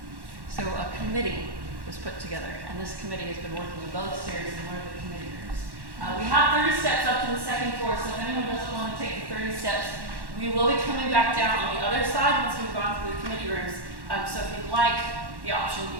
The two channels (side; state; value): left; late; 1.1 ms